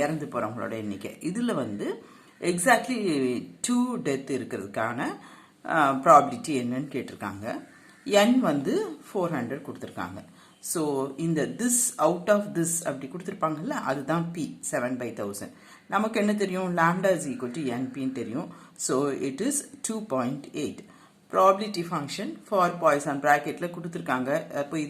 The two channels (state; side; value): identical; both; correlation 1.00